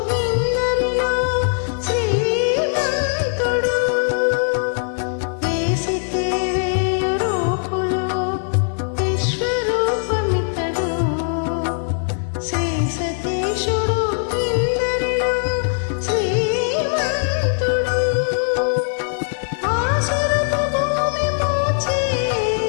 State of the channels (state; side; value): silent; right; digital silence